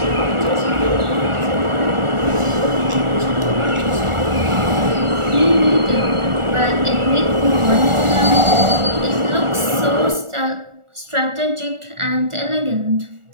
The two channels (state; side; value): late; left; 1.4 ms